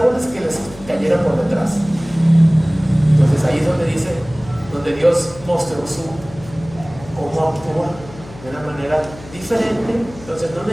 que les cayera por detrás. Entonces ahí es donde dice, donde Dios mostró cómo actúa de una manera diferente. Entonces no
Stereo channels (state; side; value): noise; left; hum, 18 dB below the sound